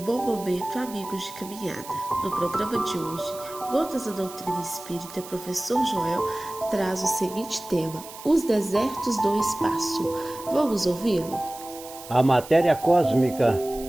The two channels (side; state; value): right; noise; hiss, 16 dB below the sound